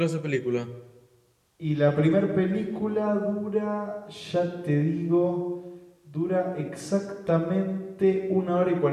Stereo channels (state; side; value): identical; both; correlation 1.00